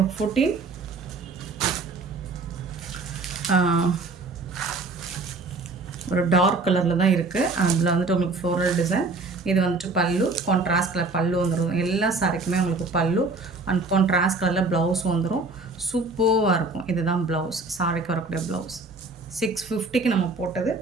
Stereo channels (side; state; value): left; quieter; 3.6 dB